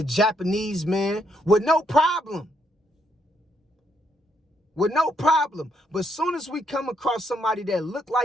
Japanese man with no problem. With no problem. But as soon as we come across somebody that look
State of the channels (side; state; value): both; normal; correlation 0.73